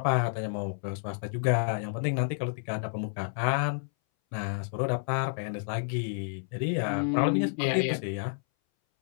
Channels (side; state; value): right; silent; 58 dB below the other